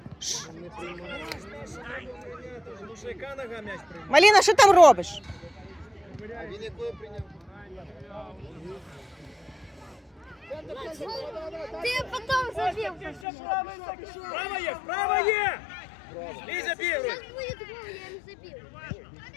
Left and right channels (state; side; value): drops out; right; at 13.2 s